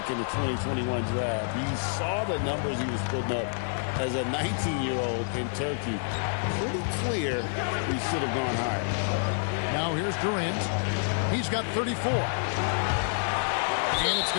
in the 2021 draft. You saw the numbers he was putting up as a 19-year-old in Turkey. Pretty clear he should have gone higher. Now here's Durant. He's got 34. And it's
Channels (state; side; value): silent; right; digital silence